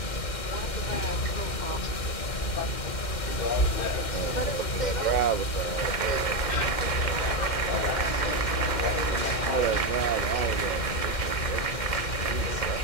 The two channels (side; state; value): right; late; 2.1 ms